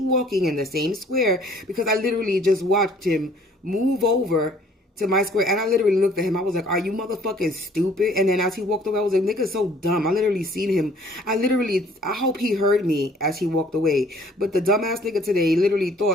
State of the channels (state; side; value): normal; both; correlation 0.57